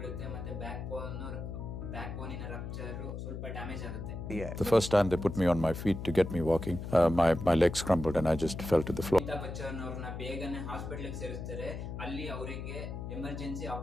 ಮತ್ತೆ ಬ್ಯಾಕ್ ಬೋನಿನ ರಪ್ಚರ್ ಸ್ವಲ್ಪ ಡ್ಯಾಮೇಜ್ ಆಗುತ್ತೆ. The first time they put me on my feet to get me walking, my legs crumbled and I just fell to the floor. Amitabh Bachchan ಅವ್ರನ್ನ ಬೇಗನೆ ಹಾಸ್ಪಿಟಲ್ ಸೇರಿಸ್ತಾರೆ. ಅಲ್ಲಿ ಅವರಿಗೆ ಎಮರ್ಜೆನ್ಸಿ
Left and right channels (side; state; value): left; noise; hum, 7 dB below the sound